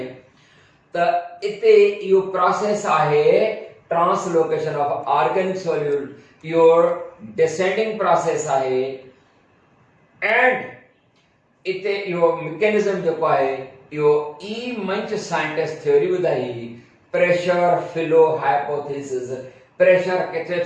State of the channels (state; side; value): identical; both; correlation 1.00